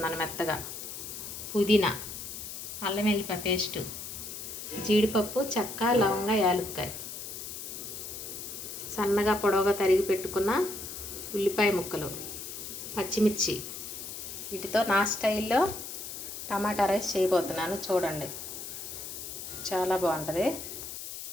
మెత్తగా, పుదీనా, అల్లం వెల్లిపాయ పేస్టు, జీడిపప్పు, చెక్క, లవంగ, యాలుక్కాయ, సన్నగా పొడవుగా తరిగి పెట్టుకున్న ఉల్లిపాయ ముక్కలు, పచ్చిమిర్చి. వీటితో నా స్టైల్లో టమాటా రైస్ చేయబోతున్నాను. చూడండి, చాలా బాగుంటుంది.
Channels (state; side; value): noise; left; hiss, 8 dB below the sound